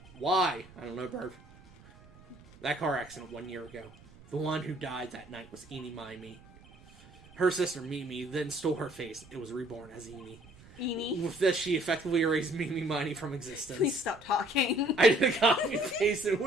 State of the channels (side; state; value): right; noise; rumble, 23 dB below the sound